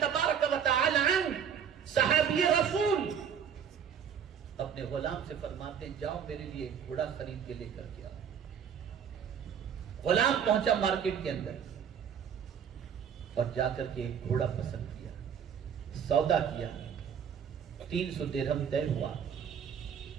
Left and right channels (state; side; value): quieter; left; 7.9 dB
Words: و تعالی عنہ، صحابی رسول، اپنے غلام سے فرماتے ہیں جاؤ میرے لیے ایک گھوڑا خرید کے لے کر کے آؤ۔ غلام پہنچا مارکیٹ کے اندر اور جا کر کے ایک گھوڑا پسند کیا، سودا کیا، 300 درہم طے ہوا۔